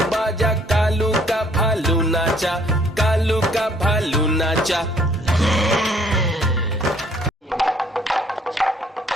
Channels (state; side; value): normal; both; correlation 0.62